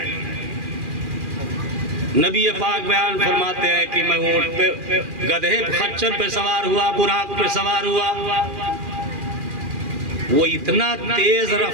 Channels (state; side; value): late; left; 2.4 ms